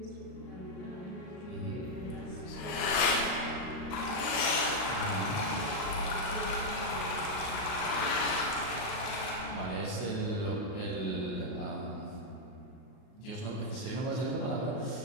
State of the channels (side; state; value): right; late; 38 ms